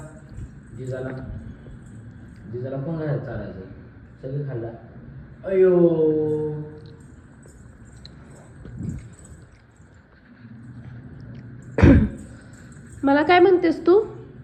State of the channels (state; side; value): identical; both; correlation 1.00